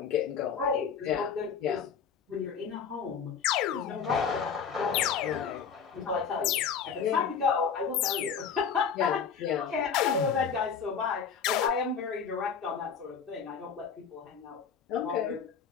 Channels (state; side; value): quieter; right; 6.7 dB